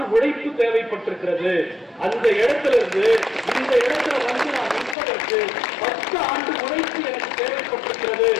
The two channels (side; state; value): right; drops out; at 5.0 s